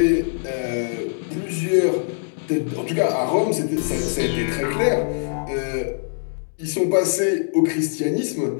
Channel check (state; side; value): silent; right; digital silence